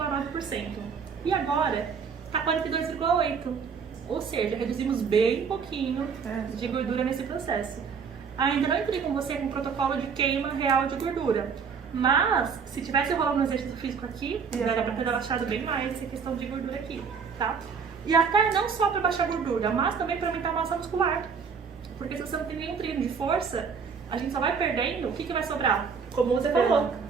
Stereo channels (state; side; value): quieter; left; 6.0 dB